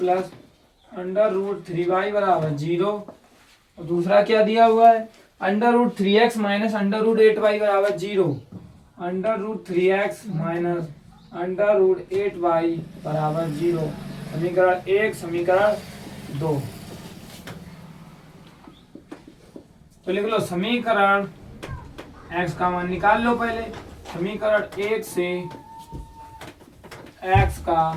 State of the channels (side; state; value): both; identical; correlation 1.00